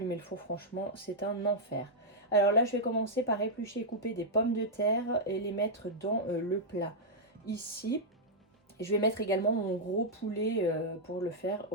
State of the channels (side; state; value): both; normal; correlation -0.06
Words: le four, franchement, c'est un enfer. Alors là, je vais commencer par éplucher et couper des pommes de terre et les mettre dans le plat. Ici, et je vais mettre également mon gros poulet pour le faire